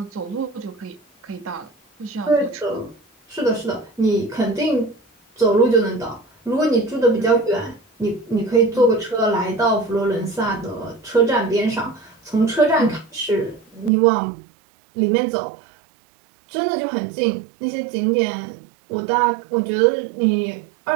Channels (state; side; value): drops out; left; at 13.9 s